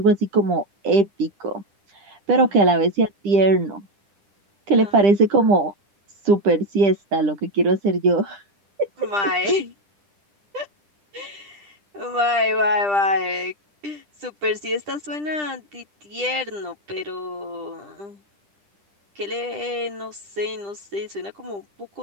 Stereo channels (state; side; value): late; left; 10 ms